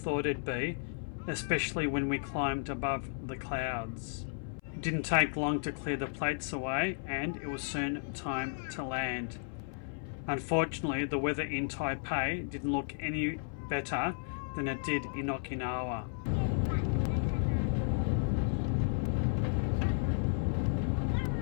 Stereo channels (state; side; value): silent; right; 55 dB below the other